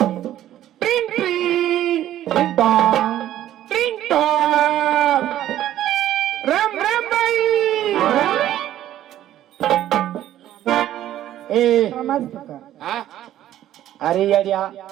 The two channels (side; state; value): left; quieter; 12.6 dB